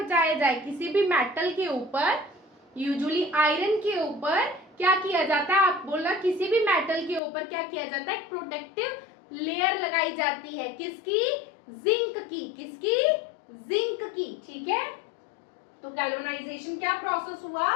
जाए, किसी भी मेटल के ऊपर, यूजुअली आयरन के ऊपर क्या किया जाता है, आप बोला किसी भी मेटल के ऊपर क्या किया जाता है, प्रोटेक्टिव लेयर लगाई जाती है, किसकी, जिंक की, किसकी, जिंक की, ठीक है। तो गैल्वेनाइजेशन क्या प्रोसेस हुआ,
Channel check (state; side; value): drops out; right; at 7.2 s